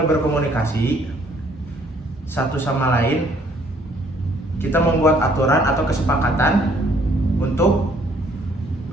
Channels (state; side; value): normal; both; correlation 0.63